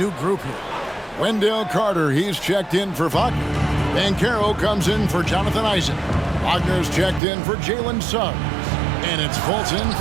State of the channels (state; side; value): drops out; left; at 7.2 s